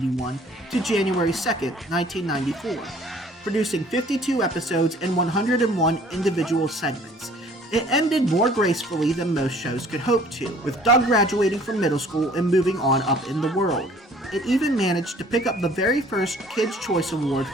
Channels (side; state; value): both; normal; correlation 0.54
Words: to January 2, 1994, producing 52 episodes and 101 individual segments. It ended more gracefully than most shows could hope to, with Doug graduating from middle school and moving on up in the world. It even managed to pick up the very first Kids' Choice Award